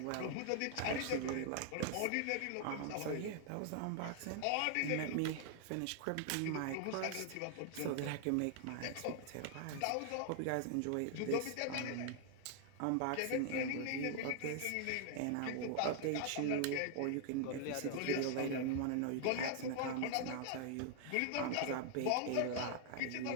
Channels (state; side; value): different; both; correlation 0.00